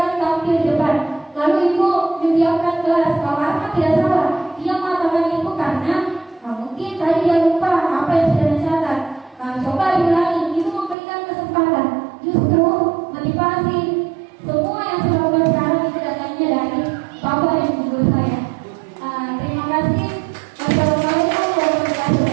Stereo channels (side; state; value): left; drops out; at 11.0 s